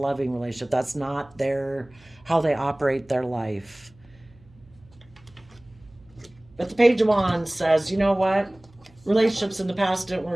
relationship. That's not how they operate their life. But the Page of Wands says, you know what? Relationships in the past didn't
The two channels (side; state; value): right; noise; hum, 27 dB below the sound